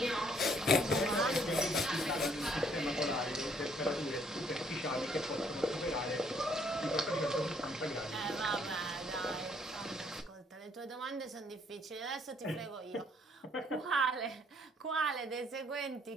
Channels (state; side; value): normal; both; correlation 0.65